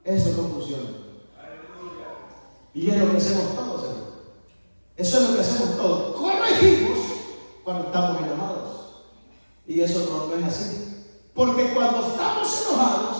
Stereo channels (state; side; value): inverted; both; correlation -1.00